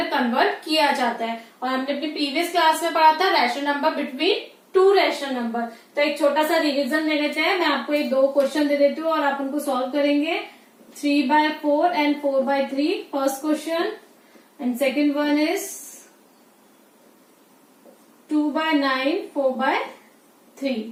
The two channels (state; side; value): identical; both; correlation 1.00